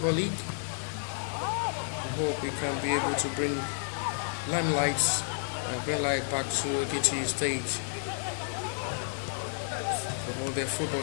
League. We hope we can be able to bring limelights and bring light back to Ekiti State, promote their football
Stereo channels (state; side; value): silent; right; digital silence